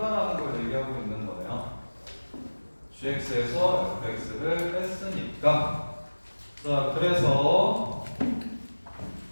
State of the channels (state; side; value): inverted; both; correlation -1.00